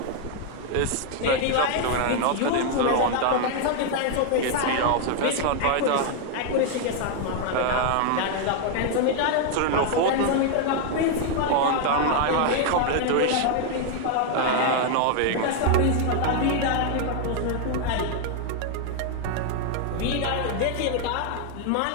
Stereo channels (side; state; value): both; different; correlation 0.00